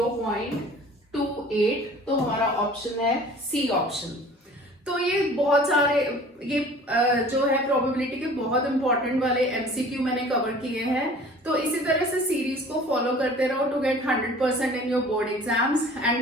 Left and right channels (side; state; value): both; normal; correlation 0.47